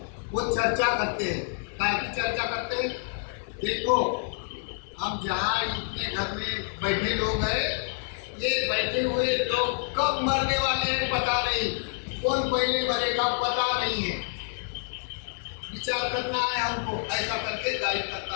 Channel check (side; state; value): right; silent; digital silence